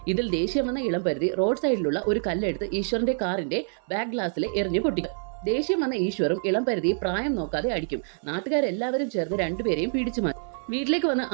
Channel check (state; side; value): silent; left; 59 dB below the other